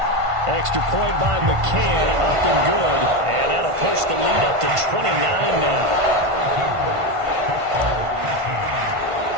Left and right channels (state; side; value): late; left; 1.5 ms